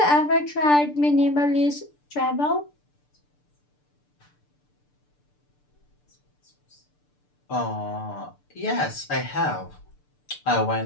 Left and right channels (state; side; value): late; right; 6.8 ms